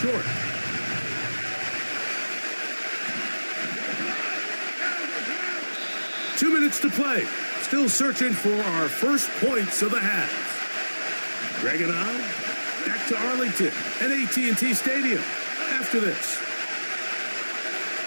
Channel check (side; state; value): both; inverted; correlation -1.00